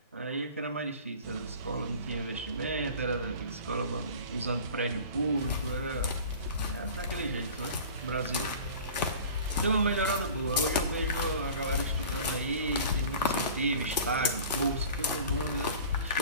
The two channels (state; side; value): inverted; both; correlation -0.41